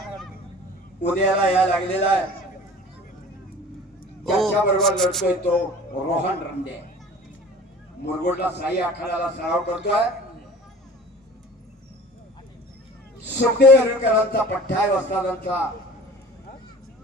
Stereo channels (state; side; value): normal; both; correlation 0.43